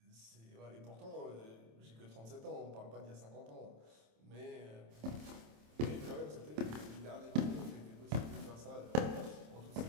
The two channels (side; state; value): left; late; 27 ms